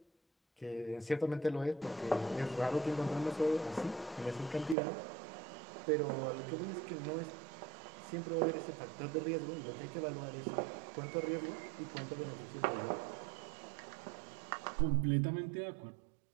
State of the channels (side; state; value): left; drops out; at 4.8 s